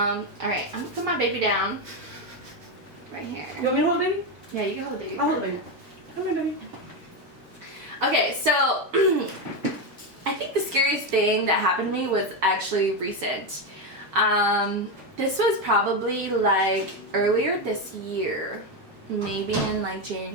right. I'm gonna put my baby down. Right here. You want me to hold the baby? Yeah, you can hold the baby. I'll hold the baby. Come here, baby. Okay, so I think the scariest thing that happened to me was actually recent. This was probably like earlier this year, maybe in like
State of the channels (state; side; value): normal; both; correlation 0.10